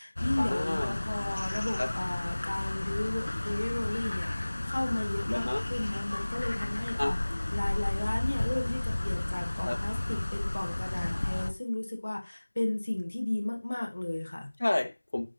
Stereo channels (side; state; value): both; inverted; correlation -1.00